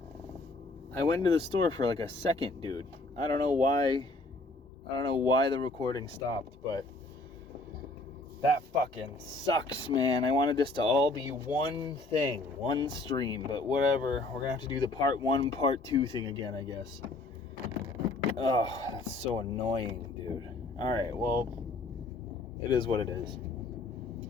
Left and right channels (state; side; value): quieter; right; 3.0 dB